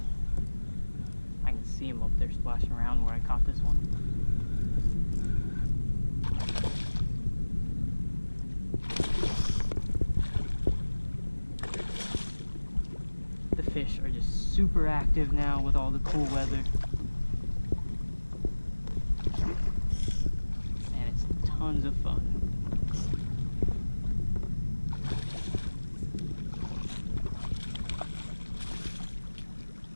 I can see him up there splashing around where I caught this one. The fish are just super active now with all the cool weather. And it's tons of fun.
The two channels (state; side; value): inverted; both; correlation -1.00